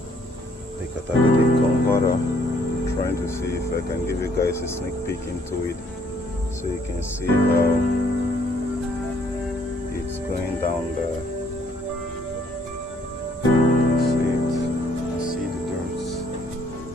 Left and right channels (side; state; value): both; normal; correlation 0.65